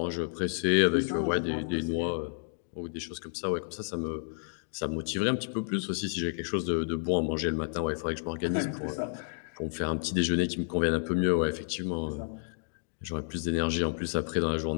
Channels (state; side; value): silent; right; digital silence